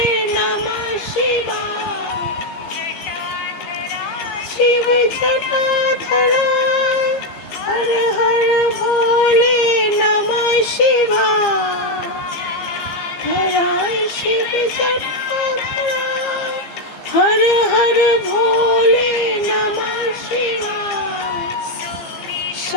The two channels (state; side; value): late; right; 15 ms